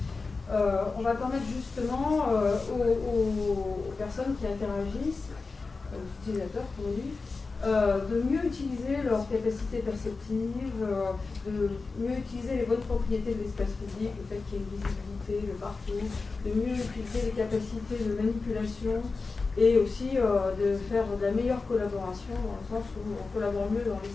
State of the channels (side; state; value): right; quieter; 4.1 dB